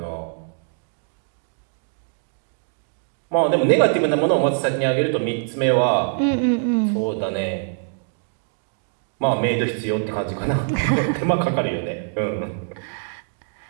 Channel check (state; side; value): silent; left; digital silence